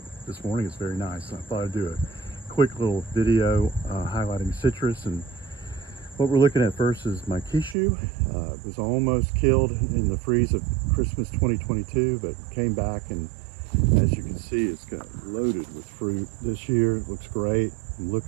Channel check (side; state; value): left; drops out; at 7.8 s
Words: this morning it's very nice. I thought I'd do a quick little video highlighting citrus. And what we're looking at first is my Kishu. It was almost killed in the freeze of Christmas 2022, but came back, and as you can see, it's got loaded with fruit this year. It looks great. I'm